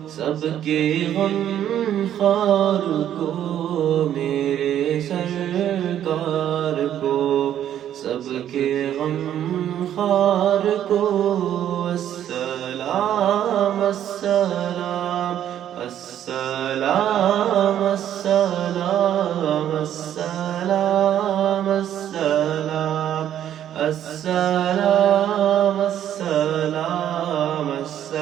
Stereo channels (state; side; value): quieter; left; 10.7 dB